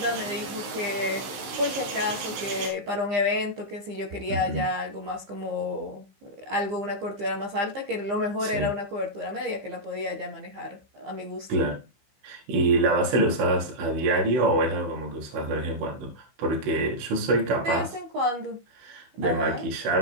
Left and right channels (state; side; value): late; left; 15 ms